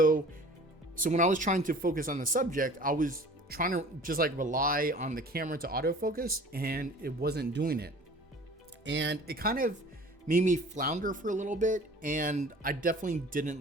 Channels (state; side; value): normal; both; correlation 0.45